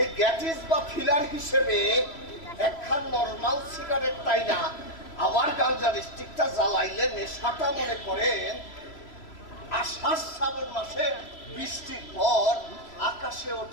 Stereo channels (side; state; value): right; late; 3.0 ms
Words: গ্যাটিস বা ফিলার হিসেবে একখান নর্মাল সিগারেট তাই না আবার গাঞ্জার স্টিকটা জ্বালাইলে নেশাটা মনে করেন আষাঢ় শ্রাবণ মাসে বৃষ্টির পর আকাশে